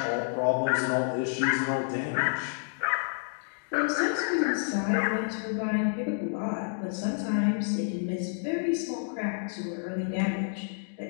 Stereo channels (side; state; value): right; silent; digital silence